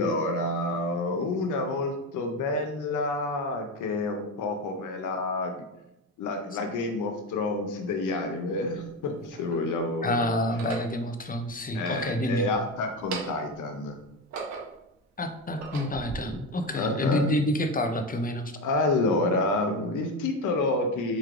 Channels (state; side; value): normal; both; correlation 0.17